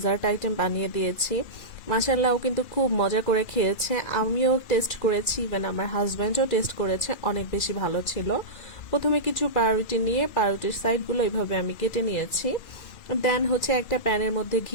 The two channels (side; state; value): right; late; 2.4 ms